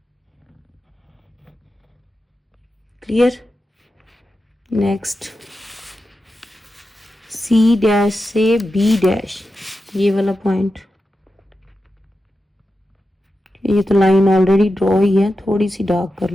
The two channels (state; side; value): normal; both; correlation 0.90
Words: क्लियर। नेक्स्ट सी डैश से बी डैश, ये वाला पॉइंट, ये तो लाइन ऑलरेडी ड्रॉ ही है, थोड़ी सी डार्क कर